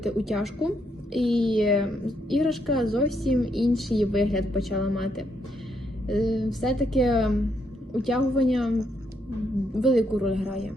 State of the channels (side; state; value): both; normal; correlation 0.76